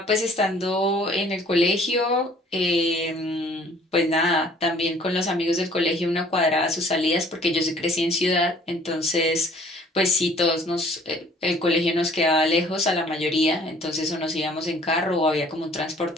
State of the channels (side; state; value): both; normal; correlation 0.55